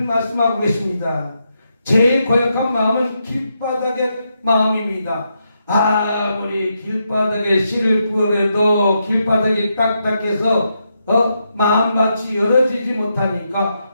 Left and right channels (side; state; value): both; inverted; correlation -0.82